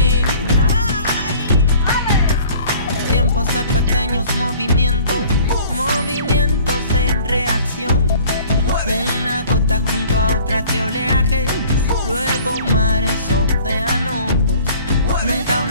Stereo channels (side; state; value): both; inverted; correlation -0.50